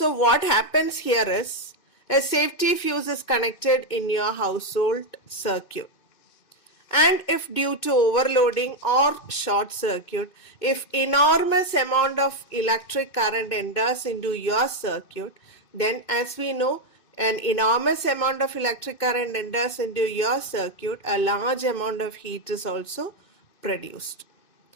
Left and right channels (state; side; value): late; right; 2.6 ms